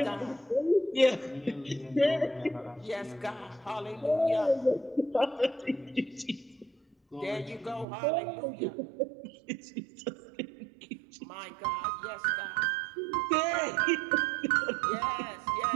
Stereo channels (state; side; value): drops out; left; at 7.9 s